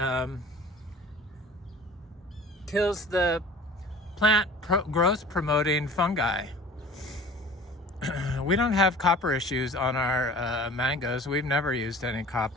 kills the plant growth promoting fungi. We don't have copper issues on our mangoes. We've never used any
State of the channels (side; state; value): both; normal; correlation 0.43